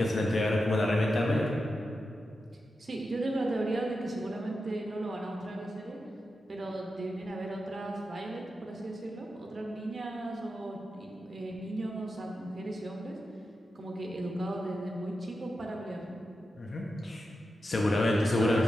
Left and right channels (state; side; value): normal; both; correlation 0.89